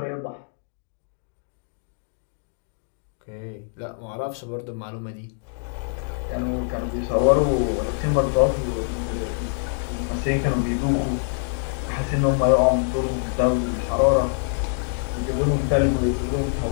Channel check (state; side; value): silent; right; digital silence